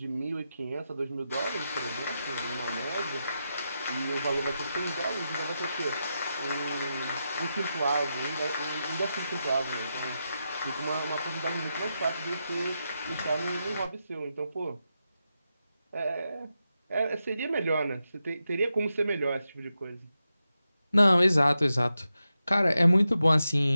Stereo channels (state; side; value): inverted; both; correlation -0.88